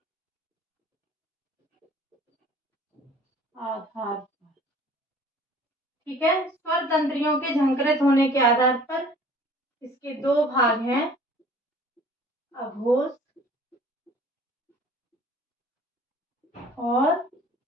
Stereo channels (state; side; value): normal; both; correlation 0.50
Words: आधार पर, ठीक है। स्वर तंत्रियों के झंकृत होने के आधार पर इसके दो भाग हैं, अघोष और